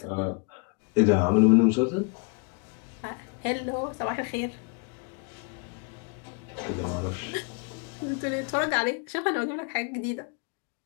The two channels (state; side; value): quieter; right; 35.1 dB